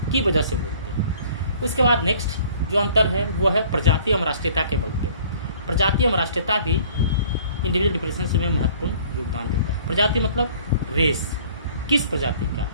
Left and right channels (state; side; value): inverted; both; correlation -0.53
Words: की वजह से बोलते हैं। उसके बाद नेक्स्ट जो अंतर है वो है प्रजाति एवं राष्ट्रीयता के बल पे। प्रजाति एवं राष्ट्रीयता भी इंडिविजुअल डिफरेंसेस में महत्वपूर्ण योगदान देता है। प्रजाति मतलब रेस, किस प्रजाति का,